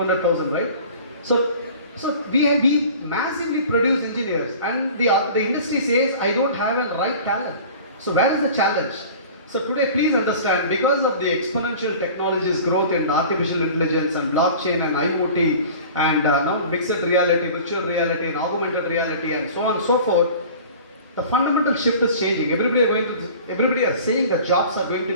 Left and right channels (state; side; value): inverted; both; correlation -0.42